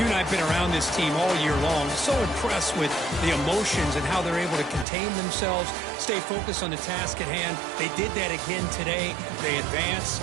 and I have been around this team all year long. So impressed with the emotions and how they're able to contain themselves, stay focused on the task at hand. They did that again today. They advance.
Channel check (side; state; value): left; drops out; at 4.9 s